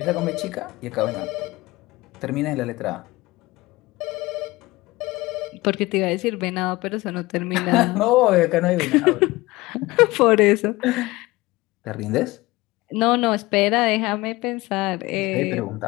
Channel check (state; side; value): quieter; right; 20.4 dB